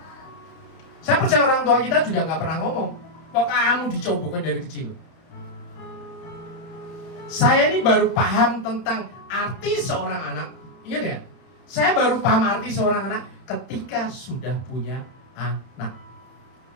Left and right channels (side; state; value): right; late; 31 ms